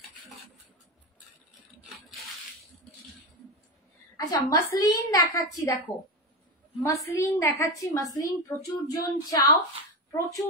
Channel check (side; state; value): both; normal; correlation 0.17